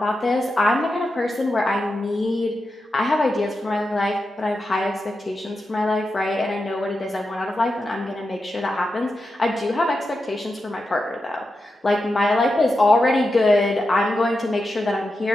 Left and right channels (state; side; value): normal; both; correlation 0.89